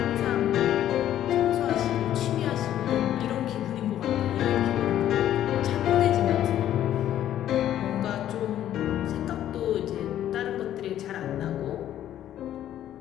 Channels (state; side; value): quieter; right; 11.7 dB